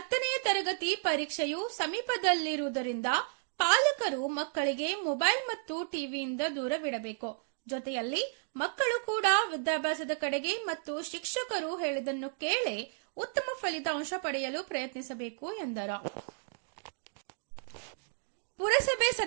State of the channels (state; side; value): silent; left; digital silence